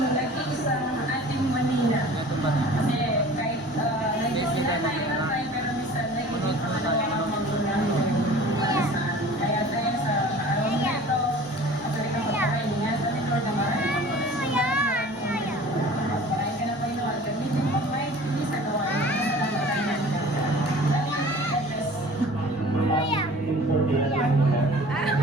sa ating Manila. Kasi kahit nag-sila tayo ng tayo, pero minsan nag-ibig pa na magulang. Kaya tayo sa araw na ito, actually ka magpakain niya. Sa Lord naman, magpakain ka na pa yun. Gamitin mo pa hindi sa gawa.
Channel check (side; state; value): both; normal; correlation 0.44